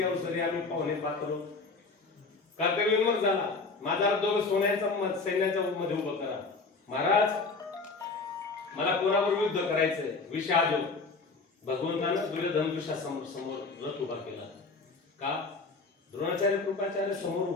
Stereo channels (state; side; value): quieter; right; 4.0 dB